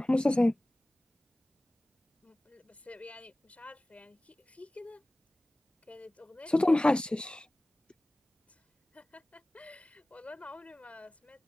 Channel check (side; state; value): both; normal; correlation 0.98